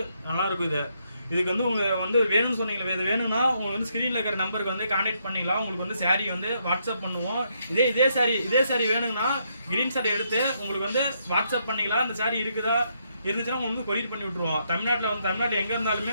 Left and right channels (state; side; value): inverted; both; correlation -0.76